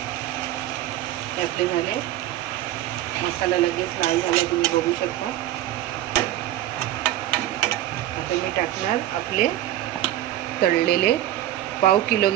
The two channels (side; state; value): left; quieter; 13.6 dB